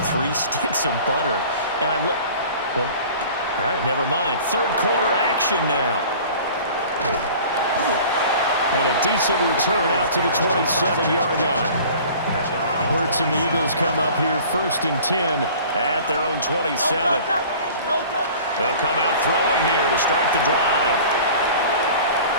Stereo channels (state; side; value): inverted; both; correlation -0.44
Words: 3 sticks of butter?" And I look. Well, all right, never mind. 3rd quarter action now. And a decent return out to the 27-yard line. Hurts and the Eagles come up here 1st and 10 at their own 27. They'll come out throwing here to start the drive.